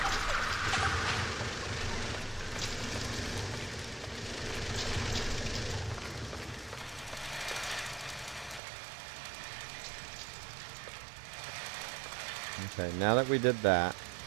Okay, now that we did that,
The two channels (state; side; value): drops out; left; at 8.6 s